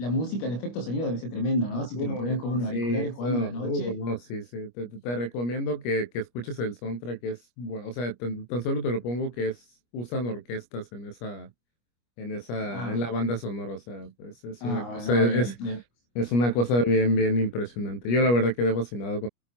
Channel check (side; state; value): right; late; 25 ms